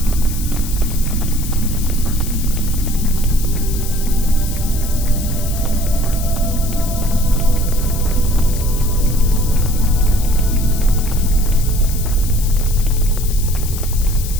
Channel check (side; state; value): left; noise; hiss, 10 dB below the sound